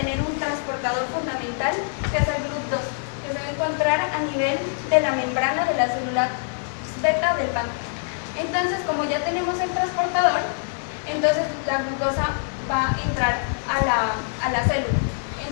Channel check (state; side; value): silent; right; 62 dB below the other